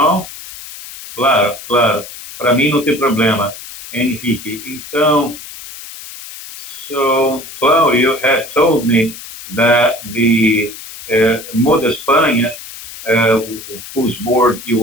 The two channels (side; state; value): left; noise; hiss, 14 dB below the sound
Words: Claro, claro. Para mim não tem problema, Henrique. Então, so Claudio had told me that the Moda España, whose board